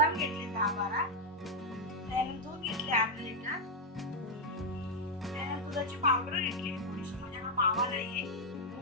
घेतले 10-12, त्यानंतर दूध घेतले अर्धा लिटर, त्यानंतर दुधाची पावडर घेतली थोडीशी, माझ्याकडे मावा नाहीये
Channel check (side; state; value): both; normal; correlation -0.01